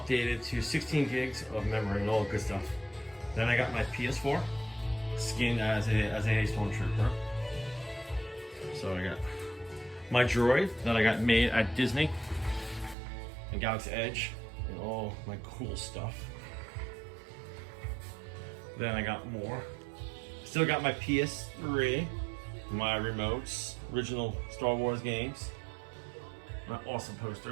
to 16 gigs of memory and all the good stuff. Then I got my PS4, skinned as a Stormtrooper. So I got my droid that I got made at Disney and Galaxy Edge and all my cool stuff. Then I got more. Still got my PS3, my remotes, original Star Wars games, my awesome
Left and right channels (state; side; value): drops out; left; at 13.0 s